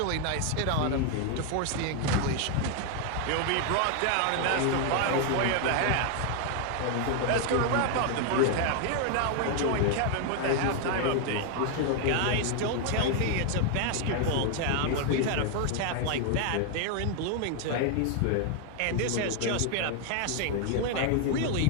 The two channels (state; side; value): different; both; correlation 0.00